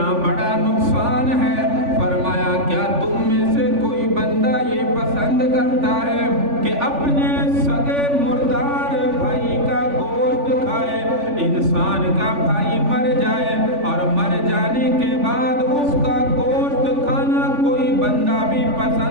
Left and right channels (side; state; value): left; late; 3.5 ms